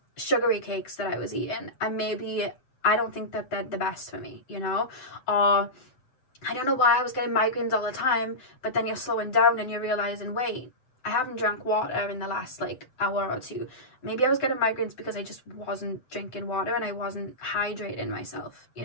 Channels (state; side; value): late; right; 7.9 ms